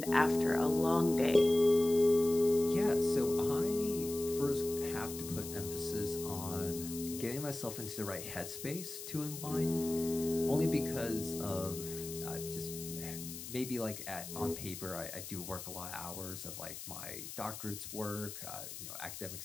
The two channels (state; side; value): noise; left; hiss, 10 dB below the sound